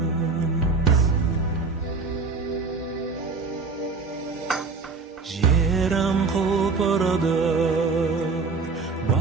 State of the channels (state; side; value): quieter; left; 4.4 dB